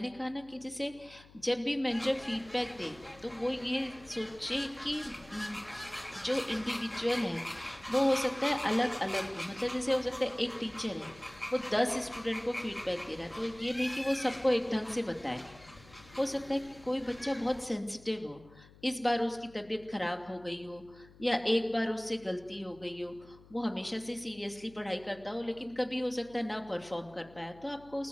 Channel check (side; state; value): left; noise; hum, 23 dB below the sound